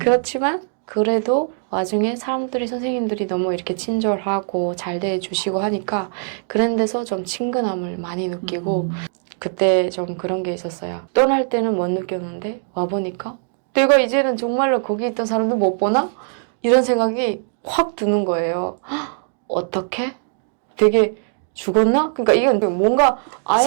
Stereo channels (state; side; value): silent; left; 63 dB below the other